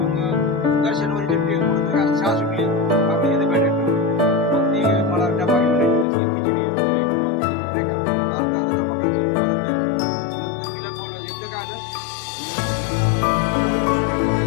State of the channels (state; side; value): drops out; right; at 6.1 s